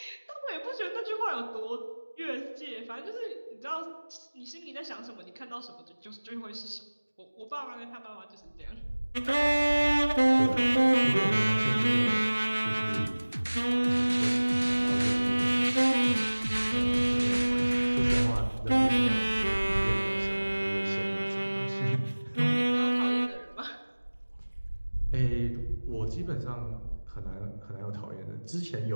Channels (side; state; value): both; inverted; correlation -1.00